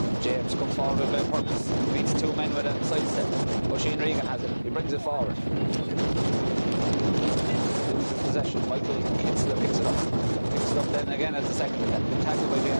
James comes forward with a purpose. Beats 2 men with a sidestep. Oisin Regan has it. He brings it forward. Loses possession. Michael Kinsler picks it up. Picks it up then again as the second attempt. Tackled by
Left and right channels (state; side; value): inverted; both; correlation -1.00